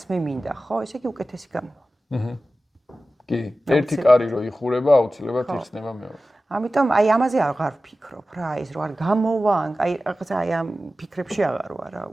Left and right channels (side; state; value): both; normal; correlation 0.95